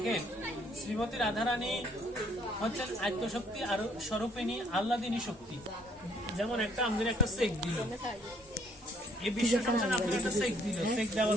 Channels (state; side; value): normal; both; correlation 0.63